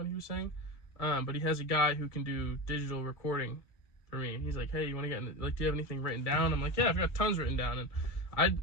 he was saying. But he has a guy who can do digital recording for me. He's like, hey, you want to get in, like, do you have anything written down? I'm like, yeah, I've got tons written down, and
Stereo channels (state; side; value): late; right; 1.8 ms